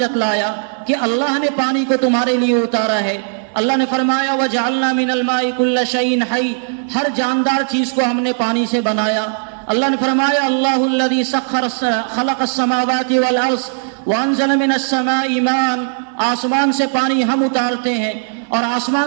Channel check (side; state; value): left; silent; digital silence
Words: کہ اللہ نے پانی کو تمہارے لیے اتارا ہے۔ اللہ نے فرمایا وَجَعَلْنَا مِنَ الْمَاءِ كُلَّ شَيْءٍ حَيٍّ، ہر جاندار چیز کو ہم نے پانی سے بنایا۔ اللہ نے فرمایا اللہ الذي خلق السماوات والارض وانزل من السماء ماء، آسمان سے پانی ہم اتارتے ہیں، اور